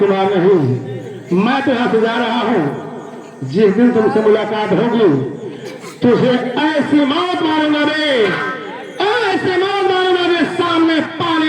नहीं, मैं तो यहाँ से जा रहा हूँ। जिस दिन तुमसे मुलाकात होगी तुझे ऐसी मौत मारूंगा रे, ऐसी मौत मारूंगा रे। सामने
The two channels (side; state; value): both; identical; correlation 1.00